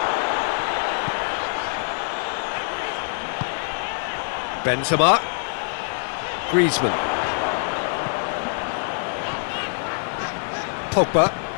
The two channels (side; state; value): right; silent; digital silence